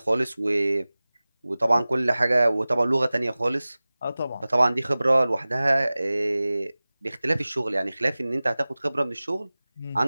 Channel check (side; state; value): both; inverted; correlation -0.98